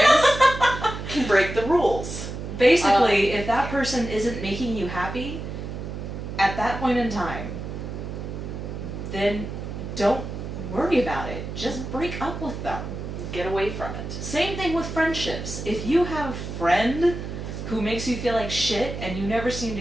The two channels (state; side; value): noise; right; hum, 7 dB below the sound